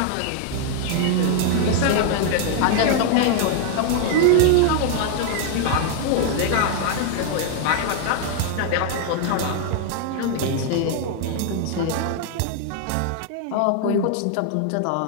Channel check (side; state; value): both; different; correlation 0.00